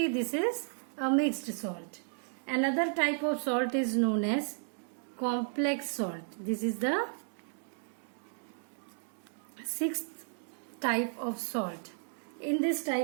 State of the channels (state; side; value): silent; left; digital silence